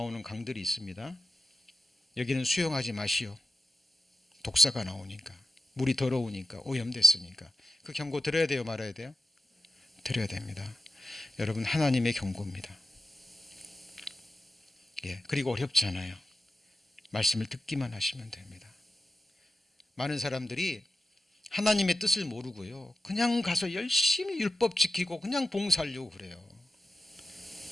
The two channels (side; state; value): both; normal; correlation 0.90